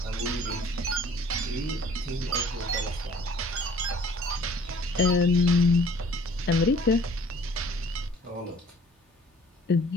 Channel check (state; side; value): normal; both; correlation 0.54